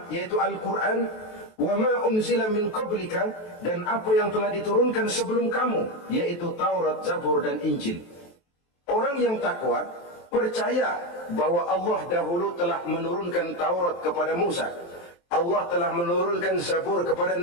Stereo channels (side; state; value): right; late; 23 ms